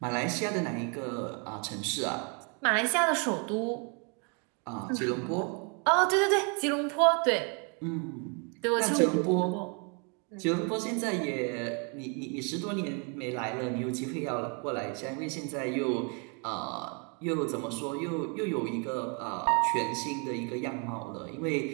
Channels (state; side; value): quieter; left; 36.1 dB